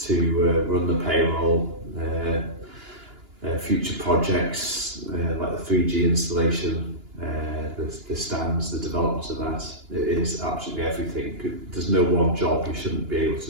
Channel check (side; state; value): left; late; 2.9 ms